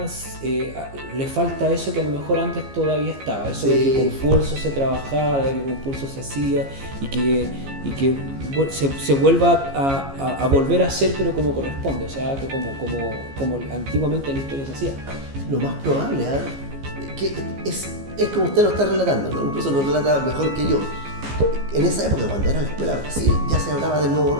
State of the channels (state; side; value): late; left; 15 ms